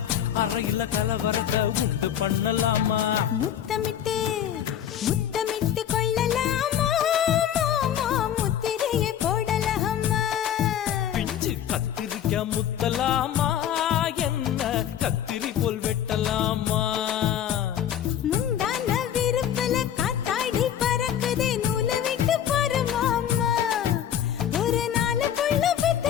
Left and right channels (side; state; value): right; quieter; 10.0 dB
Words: அறையில கலவரத்தை உண்டு பண்ணலாமா முத்தமிட்டு முத்தமிட்டு கொள்ளலாமா மாமா முத்திரையை போடலாமா பிஞ்சு கத்திரிக்க முத்தலாமா என்ன கத்திரி போல் வெட்டலாமா முந்தான விருப்பல காத்தாடி பறக்குதே நூலை விட்டு போறமாமா ஒரு நாளுக்குள்ள